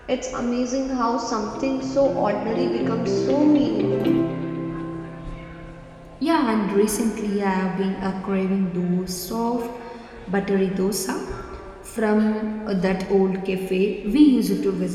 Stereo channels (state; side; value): identical; both; correlation 1.00